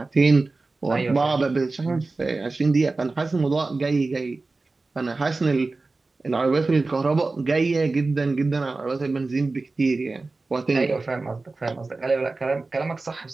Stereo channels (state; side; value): quieter; left; 3.5 dB